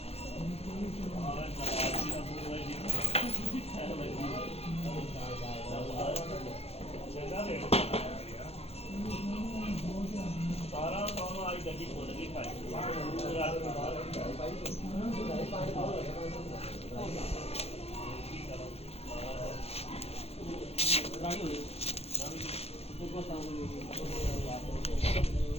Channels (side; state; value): right; late; 0.29 ms